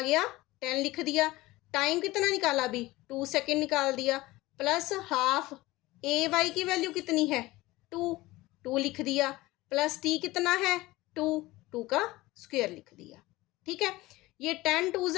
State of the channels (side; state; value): right; quieter; 19.3 dB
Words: गया 10 लिख दिया। टाइम कितना निकाला अभी 2 सेकेंड निकाल दिया, प्लस हाफ ए वाई की वैल्यू कितनी है 2 लिख दिया, प्लस t कितना है 2 का स्क्वायर लिख दिया, ठीक है। ये 10 2